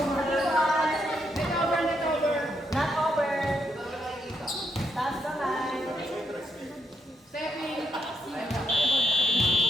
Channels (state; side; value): normal; both; correlation 0.77